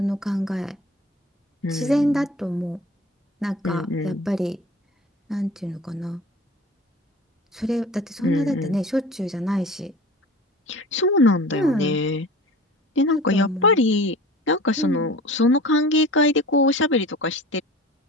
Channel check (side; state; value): both; normal; correlation 0.40